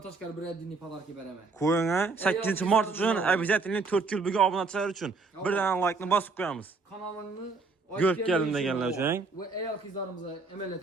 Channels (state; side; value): quieter; left; 4.1 dB